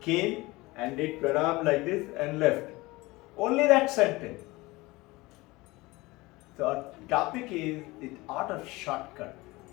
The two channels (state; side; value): quieter; right; 21.6 dB